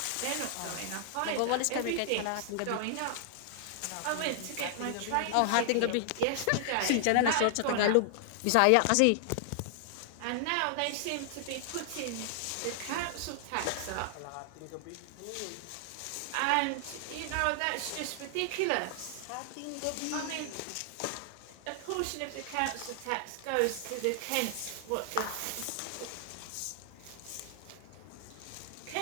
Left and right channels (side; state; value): both; different; correlation -0.01